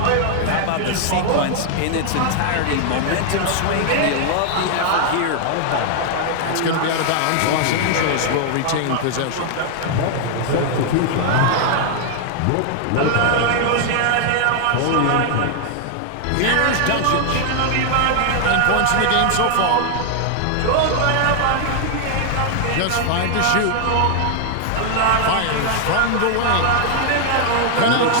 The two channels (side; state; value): both; different; correlation 0.00